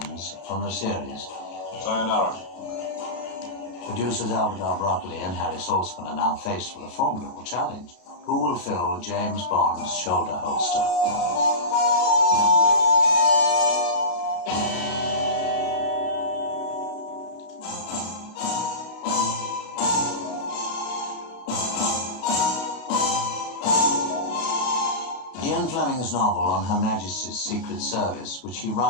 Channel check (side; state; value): right; late; 32 ms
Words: from the series. Sayonara. Producers Albert R. Broccoli and Harry Saltzman are now faced with a formidable challenge. Who will fill James Bond's shoulder holster? Ian Fleming's novel on Her Majesty's Secret Service, which he